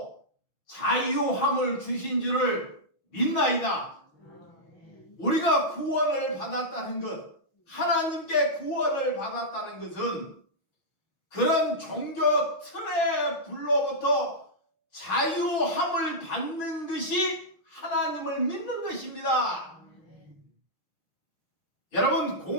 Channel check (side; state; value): right; late; 6.2 ms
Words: 자유함을 주신 줄을 믿나이다. 우리가 구원을 받았다는 것, 하나님께 구원을 받았다는 것은 그런 종교 틀의 불로부터 자유함을 받는 것이 하나님을 믿는 것입니다. 여러분,